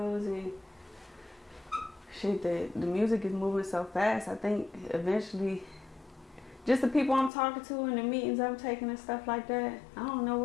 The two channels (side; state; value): right; drops out; at 7.3 s